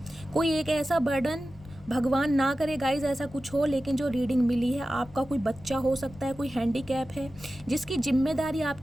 कोई एक ऐसा बर्डन, भगवान ना करे गाइज ऐसा कुछ हो, लेकिन जो रीडिंग मिली है, आपका कोई बच्चा हो सकता है, कोई हैंडीकैप है, जिसकी जिम्मेदारी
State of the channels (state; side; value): noise; left; rumble, 20 dB below the sound